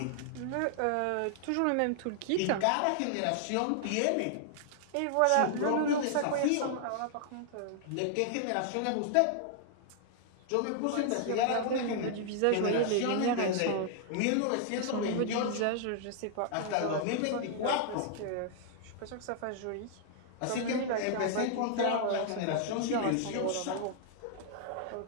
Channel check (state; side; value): different; both; correlation -0.01